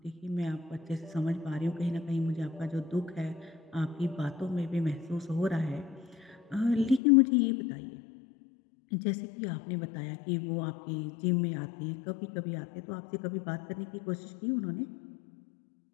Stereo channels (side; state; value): right; drops out; at 7.0 s